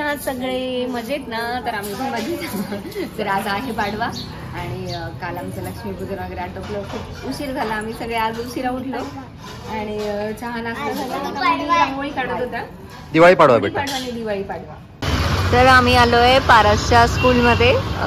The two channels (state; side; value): identical; both; correlation 1.00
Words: सगळे? मजेत ना? तर आम्ही पण मजेत. तर आज आहे पाडवा आणि काल आमचं लक्ष्मीपूजन वगैरे आटोपलं. खूप उशीर झाला, आम्ही सगळे आज उशिरा उठलो आणि चहा नाश्ता झाला. रांगोळी काढत होता. दिवाळी पाडवा बेटा. दिवाळी पाडवा. तर आम्ही आलोय पारसच्या स्कूलमध्ये